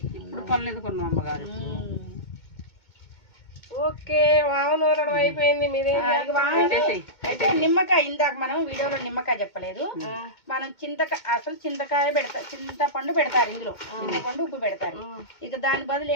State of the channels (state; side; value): late; right; 2.2 ms